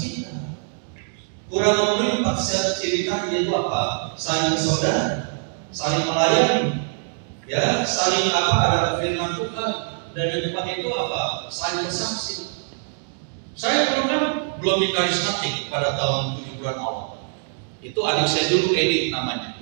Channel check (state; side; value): silent; left; digital silence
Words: Kurang memenuhi 4 ciri tadi, yaitu apa? Saling bersaudara, saling melayani. Ya, saling ada firman Tuhan, dan yang depan itu apa? Saling bersaksi. Saya belum di karismatik pada tahun 7 bulan awal. Itu adik saya dulu, Edi namanya,